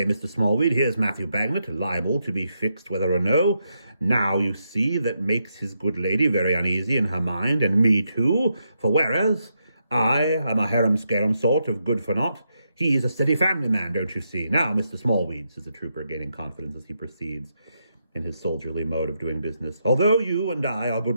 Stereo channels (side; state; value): both; inverted; correlation -0.82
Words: Mr. Smallweed, here's Matthew Bagnet, liable to be fixed whether or no. Now, you see, that makes his good lady very uneasy in her mind, and me too, for whereas I am a harum-scarum sort of good-for-naught, he's a steady family man, don't you see? Now, Mr. Smallweed," says the trooper, gaining confidence as he proceeds in his soldierly mode of doing business, "although you and I are